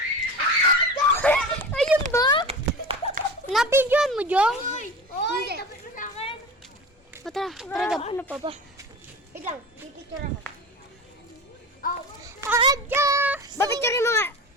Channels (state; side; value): normal; both; correlation 0.32